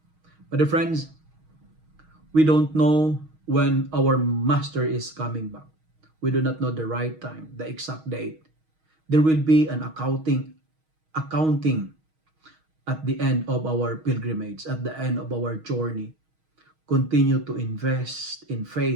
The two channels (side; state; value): left; late; 6.4 ms